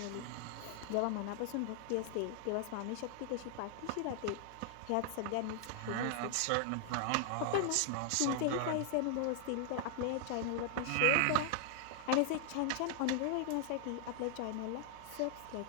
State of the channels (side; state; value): both; different; correlation 0.00